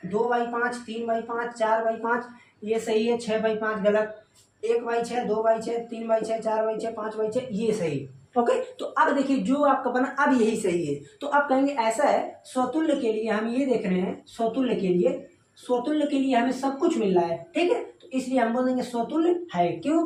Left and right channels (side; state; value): both; identical; correlation 1.00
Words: 2/5, 3/5, 4/5, ये सही है, 6/5 गलत, 1/6, 2/6, 3/6, 4/6, 5/6, ये सही। ओके, तो अब देखिए जो आपका बना अब यही सही है। तो अब कहेंगे ऐसा है, स्वतुल्य के लिए हम ये देख रहे हैं, स्वतुल्य के लिए हमें सब कुछ मिल रहा है, ठीक है, तो इसलिए हम बोलेंगे स्वतुल्य है। क्यों?